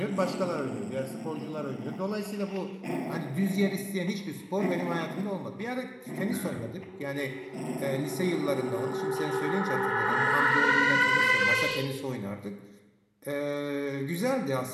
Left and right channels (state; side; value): identical; both; correlation 1.00